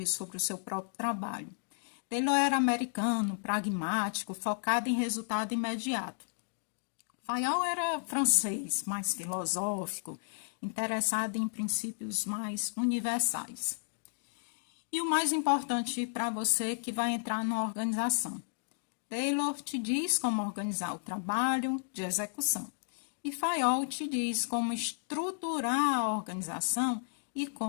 sobre o seu próprio trabalho. Taylor era americano, pragmático, focado em resultado imediato. Fayol era francês, mais filosófico, interessado em princípios mais universais. E o mais importante para você que vai entrar na organização. Taylor te diz como organizar o trabalho de execução e Fayol te diz como estruturar a organização e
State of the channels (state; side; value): silent; right; digital silence